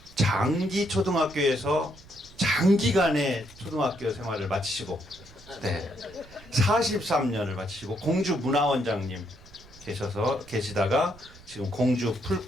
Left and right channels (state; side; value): noise; right; rumble, 22 dB below the sound